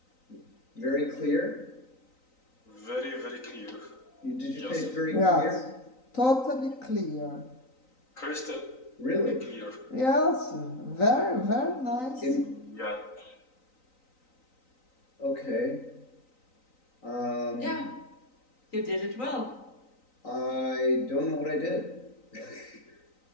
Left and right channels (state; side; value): late; right; 3.9 ms